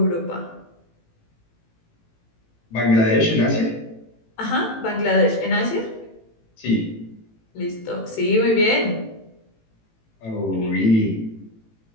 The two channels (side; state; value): right; late; 18 ms